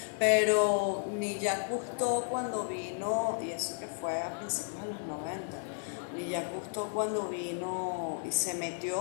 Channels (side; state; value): right; silent; digital silence